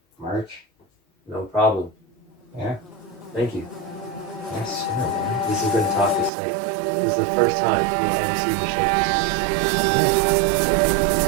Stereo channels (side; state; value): left; drops out; at 6.3 s